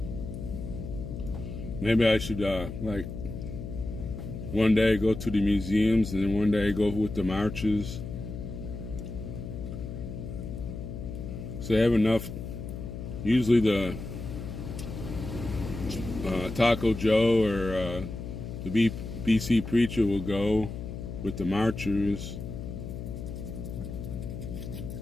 Maybe I should like one day go to the museums and then one day go with the marches. So they have enough. Usually the Taco Joe or the BC Preacher will go with the marchers.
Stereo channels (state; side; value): noise; left; hum, 8 dB below the sound